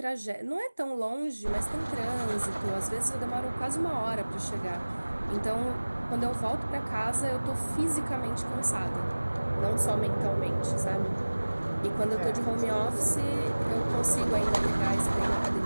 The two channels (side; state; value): both; inverted; correlation -1.00